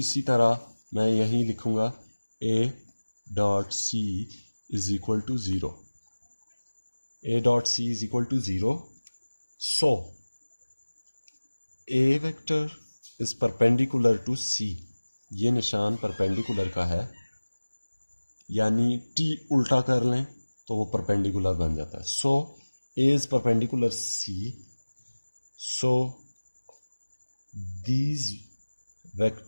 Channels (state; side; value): inverted; both; correlation -1.00